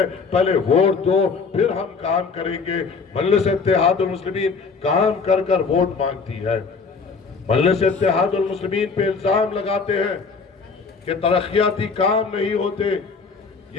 پہلے ووٹ دو پھر ہم کام کریں گے۔ مجلس اتحاد المسلمین کام کر کر ووٹ مانگتی ہے۔ مجلس اتحاد المسلمین پہ الزام لگاتے ہیں کہ ترقیاتی کام نہیں ہوتے۔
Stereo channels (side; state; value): right; quieter; 4.9 dB